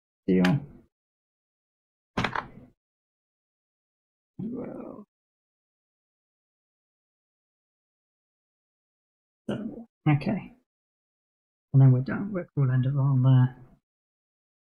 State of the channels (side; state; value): both; identical; correlation 1.00